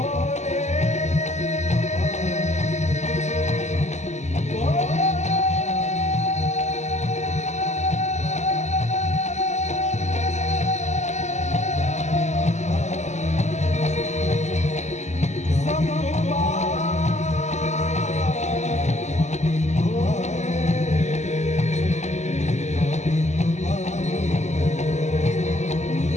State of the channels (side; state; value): right; late; 0.33 ms